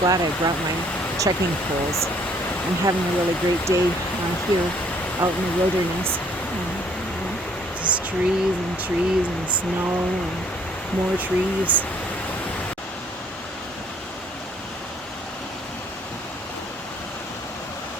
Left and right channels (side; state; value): both; normal; correlation 0.62